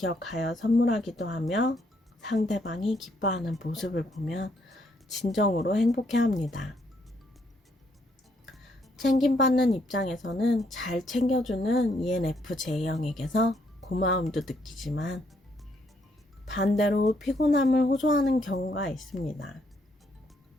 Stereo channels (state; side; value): normal; both; correlation 0.72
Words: 선물하기도 하며 상대방이 기뻐하는 모습을 보면 진정으로 행복해합니다. 챙김받는 입장에서는 잘 챙겨주는 ENFJ형에게서 고마움도 느끼지만 반대로 피곤함을 호소하는 경우가 있습니다.